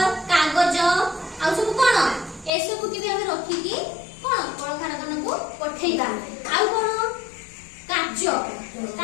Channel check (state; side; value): drops out; right; at 2.5 s